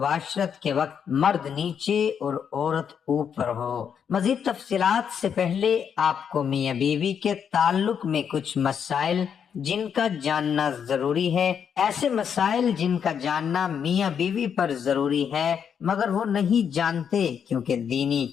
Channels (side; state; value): right; quieter; 7.6 dB